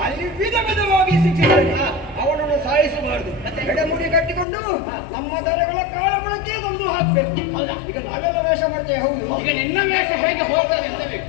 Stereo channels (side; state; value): right; drops out; at 4.5 s